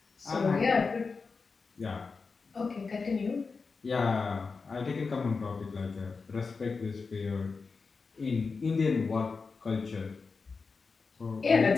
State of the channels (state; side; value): quieter; right; 4.6 dB